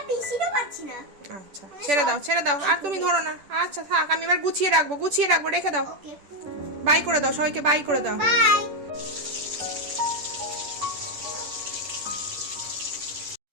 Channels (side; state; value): left; late; 10 ms